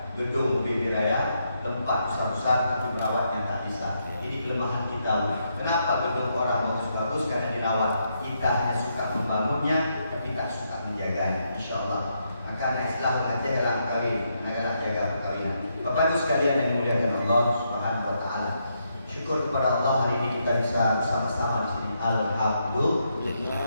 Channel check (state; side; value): inverted; both; correlation -0.79